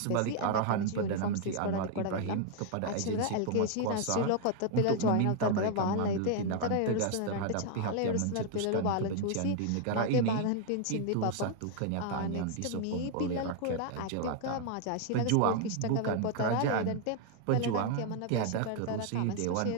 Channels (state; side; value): different; both; correlation 0.00